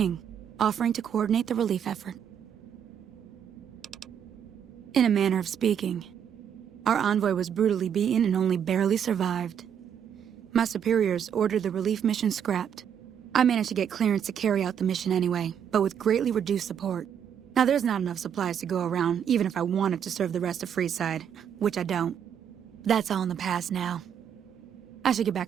offering to coordinate the relief effort. In a manner of speaking, our envoy was brutally beaten and only barely survived. My superiors ordered the relief mission scrapped. I managed to get clearance to carry out the mission anyway, but with greatly reduced support. Now there's not enough supplies to go around, even if I wanted to serve the rest of Freeside, which I don't. That's all in the past now. I should get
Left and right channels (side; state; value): left; quieter; 8.5 dB